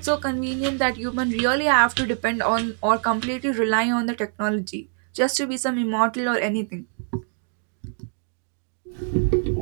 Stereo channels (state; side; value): silent; left; 58 dB below the other